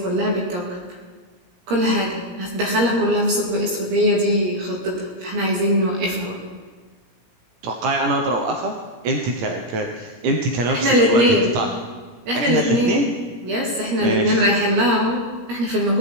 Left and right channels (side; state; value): left; late; 17 ms